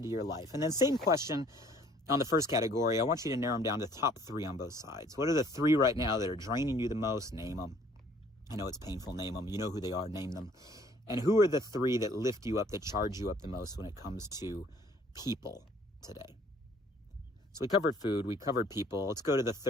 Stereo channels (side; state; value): both; normal; correlation 0.58